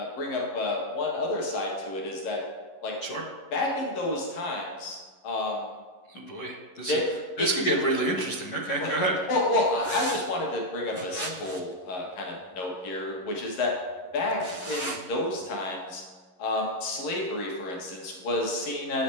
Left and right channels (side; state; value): right; late; 11 ms